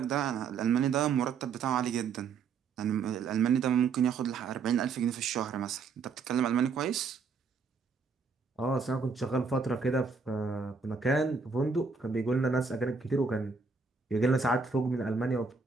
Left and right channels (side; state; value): left; quieter; 5.1 dB